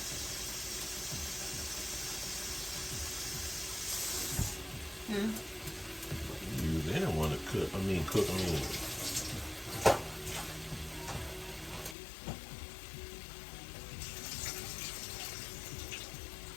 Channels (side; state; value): right; drops out; at 12.0 s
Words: You didn't want to cook on.